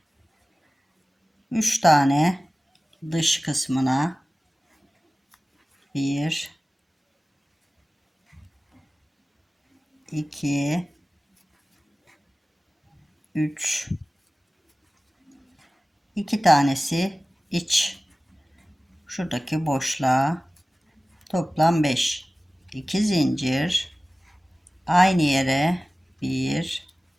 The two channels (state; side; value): normal; both; correlation 0.97